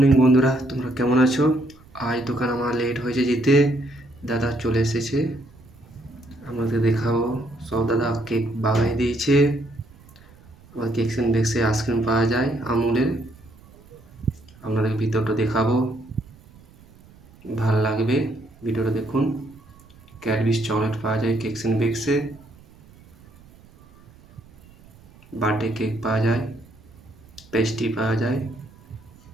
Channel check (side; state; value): right; noise; rumble, 25 dB below the sound